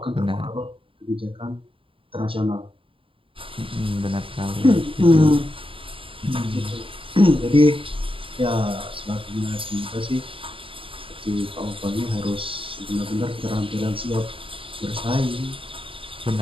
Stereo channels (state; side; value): late; left; 0.26 ms